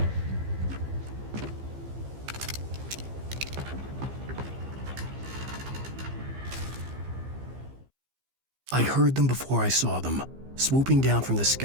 I heard them before I saw them, swooping down from the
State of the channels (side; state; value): left; late; 15 ms